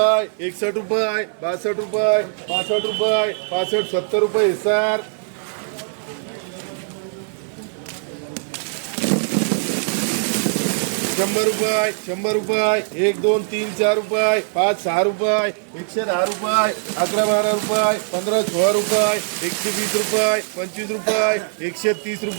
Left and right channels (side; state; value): left; silent; digital silence